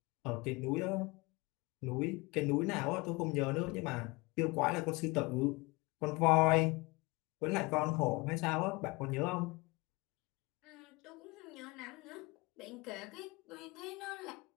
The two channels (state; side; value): quieter; right; 25.0 dB